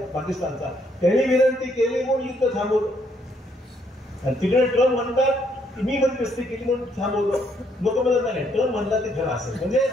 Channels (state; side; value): normal; both; correlation 0.71